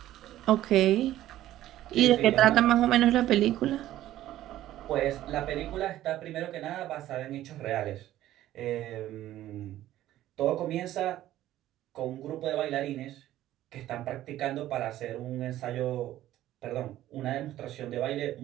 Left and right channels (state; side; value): quieter; left; 13.8 dB